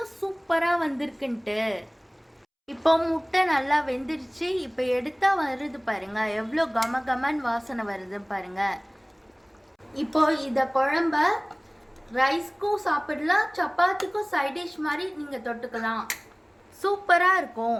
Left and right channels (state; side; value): identical; both; correlation 1.00